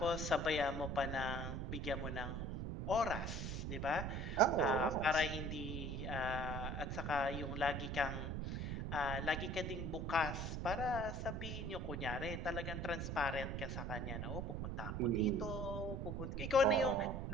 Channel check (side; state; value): right; noise; rumble, 3 dB below the sound